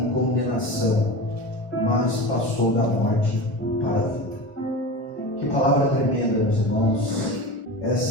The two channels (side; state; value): right; late; 1.0 ms